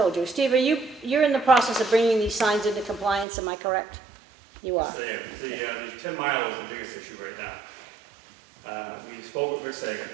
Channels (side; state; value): left; drops out; at 3.2 s